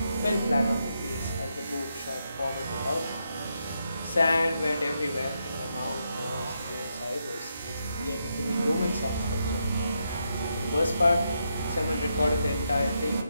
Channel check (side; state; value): both; inverted; correlation -0.82